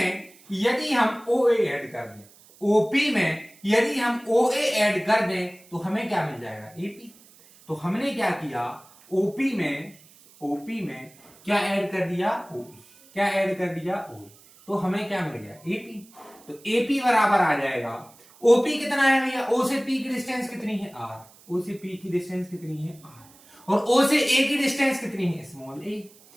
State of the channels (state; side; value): noise; right; hiss, 26 dB below the sound